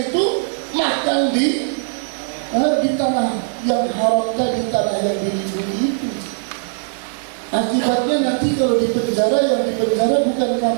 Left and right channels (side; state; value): left; silent; digital silence